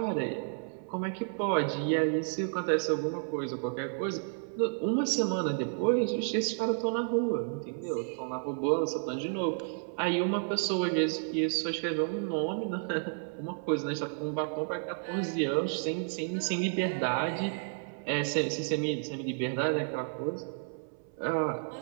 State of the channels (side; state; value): left; silent; 57 dB below the other